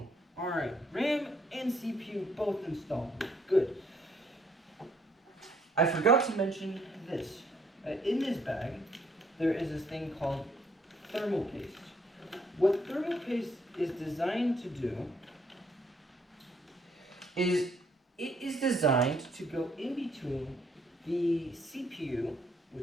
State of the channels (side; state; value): both; normal; correlation 0.67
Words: Alright, RAM and CPU both installed. Good. I forgot to mention this. In this bag, there is this thing called thermal paste. What thermal paste is designed to do is it is designed to go in between the CPU,